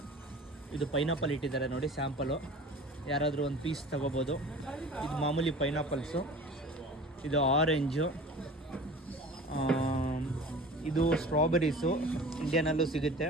ಇದು ಪೈನಾಪಲ್ ಇಟ್ಟಿದ್ದಾರೆ ನೋಡಿ, ಸ್ಯಾಂಪಲು. ಯಾರಾದರೂ ಒಂದು ಪೀಸ್ ತೊಗೋಬೋದು. ಇದು ಮಾಮೂಲಿ ಪೈನಾಪಲ್ಸು, ಇದು ಆರೆಂಜು, ಇದು ಸ್ಟ್ರಾಬೆರೀಸು, ಇಂಡಿಯಾನಲ್ಲೂ ಸಿಗುತ್ತೆ.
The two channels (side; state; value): both; normal; correlation 0.41